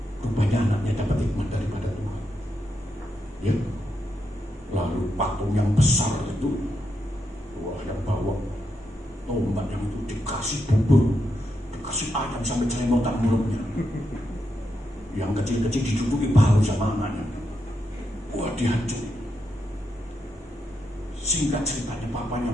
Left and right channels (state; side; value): normal; both; correlation 0.83